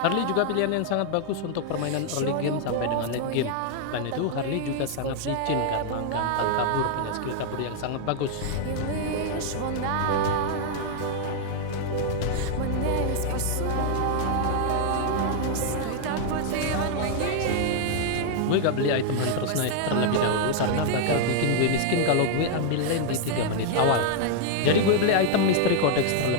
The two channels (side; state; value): both; different; correlation 0.00